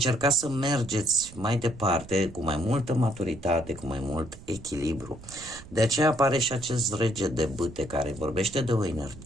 să mergeți mai departe cu mai multă maturitate, cu mai mult echilibru. De aceea apare și acest rege de bâte care vorbește de o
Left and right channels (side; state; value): right; noise; rumble, 17 dB below the sound